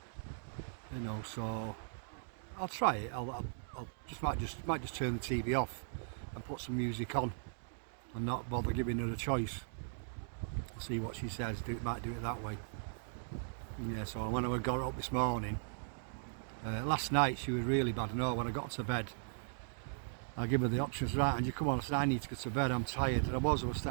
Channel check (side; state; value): left; silent; digital silence